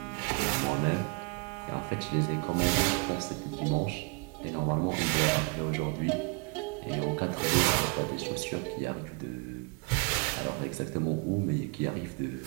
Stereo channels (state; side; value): quieter; left; 32.4 dB